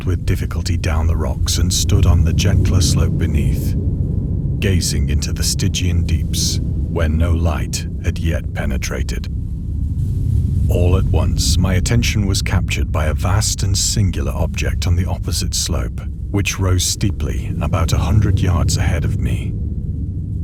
with difficulty down the rocks and stood on the gentler slope beneath, gazing into the Stygian deeps, where no light had yet penetrated. All at once, my attention was captured by a vast and singular object on the opposite slope, which rose steeply about 100 yards ahead of me.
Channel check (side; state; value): both; identical; correlation 1.00